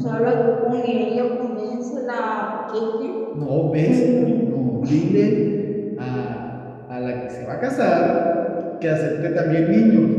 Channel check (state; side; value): identical; both; correlation 1.00